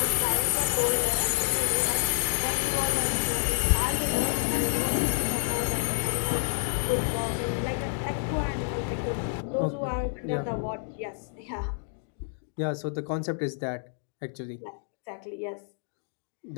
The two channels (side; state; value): right; silent; digital silence